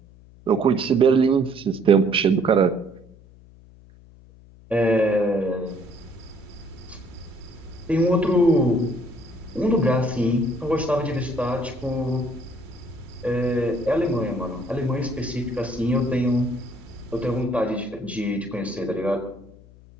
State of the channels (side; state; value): left; noise; hum, 23 dB below the sound